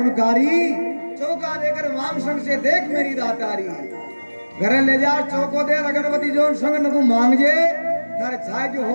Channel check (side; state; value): both; inverted; correlation -1.00